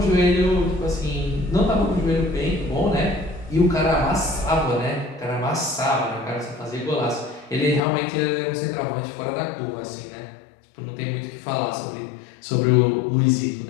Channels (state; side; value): drops out; right; at 7.8 s